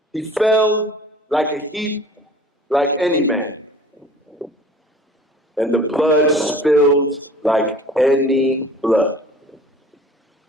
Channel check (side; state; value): both; normal; correlation 0.47